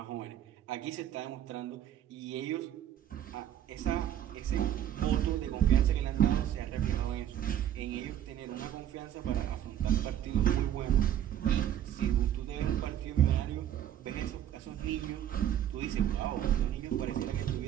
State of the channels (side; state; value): left; quieter; 10.9 dB